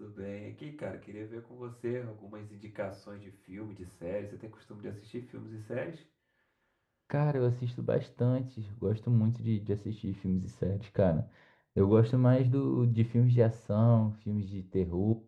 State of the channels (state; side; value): identical; both; correlation 1.00